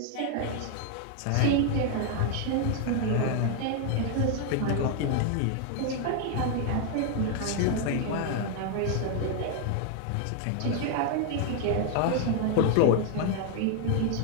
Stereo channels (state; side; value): different; both; correlation 0.00